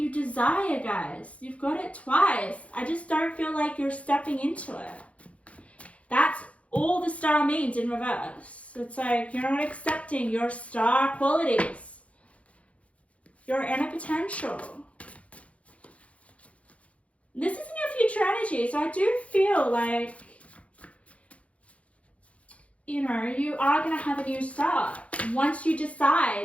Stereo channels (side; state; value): right; late; 0.064 ms